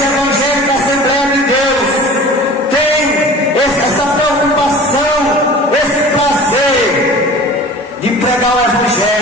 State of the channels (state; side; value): normal; both; correlation 0.41